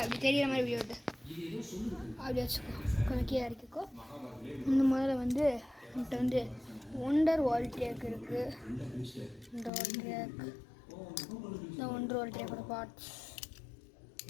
அப்படி தெரிகிற மாதிரி வீடியோ எடுத்து அப்படி வச்சுக்கோ, கொஞ்சம் கீழே இறக்கிக்கோ. இந்த முதல்ல வந்து என்கிட்ட வந்து ஒண்டர் வால் ட்ரேக் இருக்குது. இந்த வால் ட்ரேக், இந்த ஒண்டர் வால் ட்ரேக்கோட பார்ட்ஸ்.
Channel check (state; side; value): drops out; right; at 9.7 s